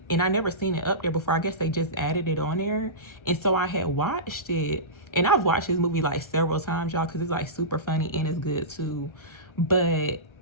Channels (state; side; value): late; right; 1.3 ms